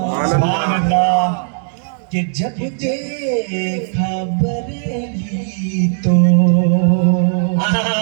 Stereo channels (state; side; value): silent; left; digital silence